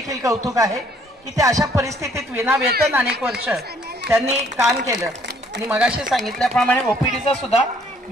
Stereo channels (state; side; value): normal; both; correlation 0.63